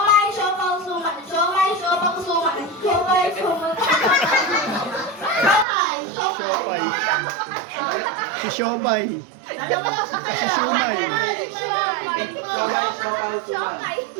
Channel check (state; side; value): drops out; left; at 5.7 s